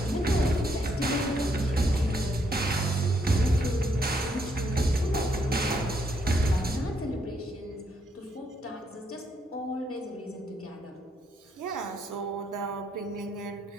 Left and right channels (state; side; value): normal; both; correlation 0.74